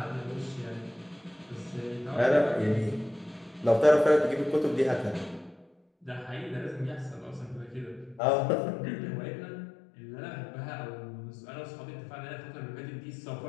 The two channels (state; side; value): drops out; right; at 8.2 s